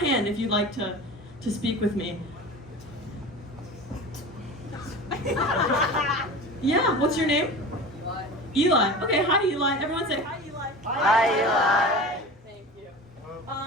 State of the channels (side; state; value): both; normal; correlation 0.33